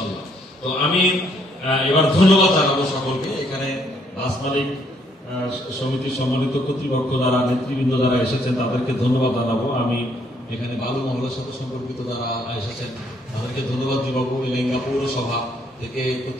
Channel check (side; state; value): both; normal; correlation 0.69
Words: তো আমি এবার ধন্যবাদ জানাবো সকলকে। এখানে বাস মালিক সমিতির সম্মানিত কর্তৃপক্ষ যারা নেতৃবৃন্দ যারা এসেছেন তাদেরকে ধন্যবাদ জানাবো। আমি এখানে বালু মহলের সাথে সম্পর্কিত যারা এসেছেন তাদেরকে ধন্যবাদ জানাবো। এলেঙ্গা পৌরসভা থেকে